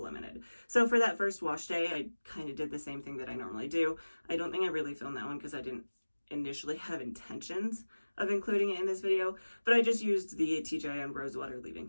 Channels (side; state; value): both; inverted; correlation -1.00